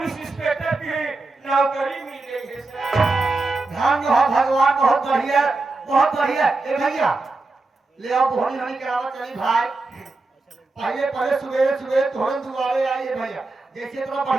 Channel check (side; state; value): left; quieter; 3.4 dB